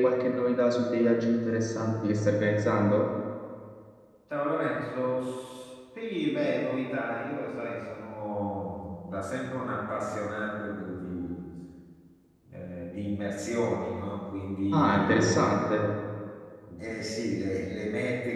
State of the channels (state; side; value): identical; both; correlation 1.00